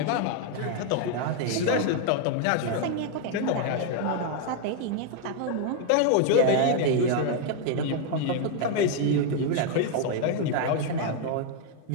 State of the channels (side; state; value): both; different; correlation 0.00